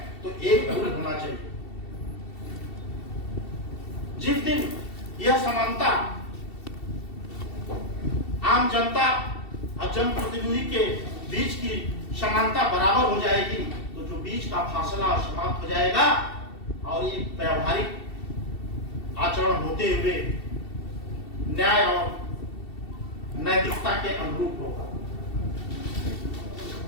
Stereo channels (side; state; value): right; late; 2.7 ms